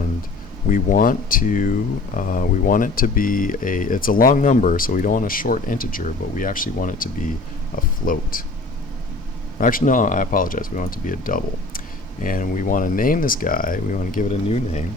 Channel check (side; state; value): right; quieter; 3.3 dB